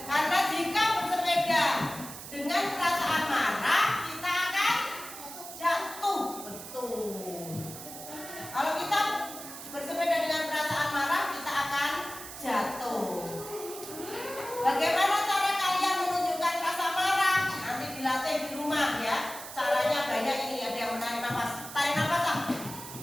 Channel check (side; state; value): right; noise; hiss, 12 dB below the sound